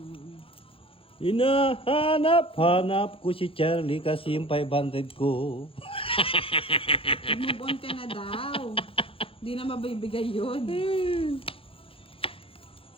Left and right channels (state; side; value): late; right; 0.27 ms